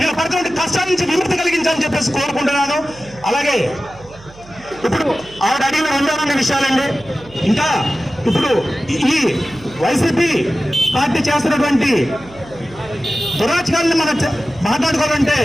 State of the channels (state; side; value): noise; right; hum, 22 dB below the sound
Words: పడుతున్న కష్టాల నుంచి విముక్తి కలిగించాలని చెప్పేసి కోరుకుంటున్నాను. అలాగే ఇప్పుడు ఆవిడ అడిగిన 2 విషయాలండి. ఇంకా ఇప్పుడు ఈ వైసీపీ పార్టీ చేస్తున్నటువంటి దురాచకాలను మనం మాట్లాడుకోవాలంటే